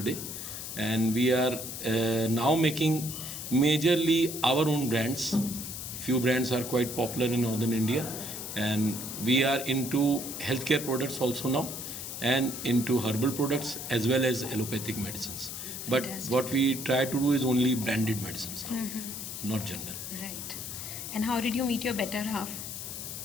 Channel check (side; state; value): left; noise; hiss, 7 dB below the sound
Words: And we are now making majorly our own brands. Few brands are quite popular in northern India, and we are into healthcare products also now, and into herbal products as well as allopathic medicines. But Fantastic. what we try to do is only branded medicines now, not general. Right. And how did you meet your better half?